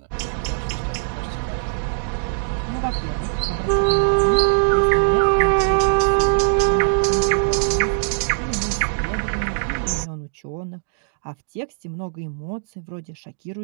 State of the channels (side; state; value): left; silent; digital silence